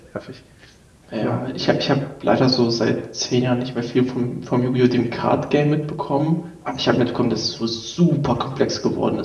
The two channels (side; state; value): both; identical; correlation 1.00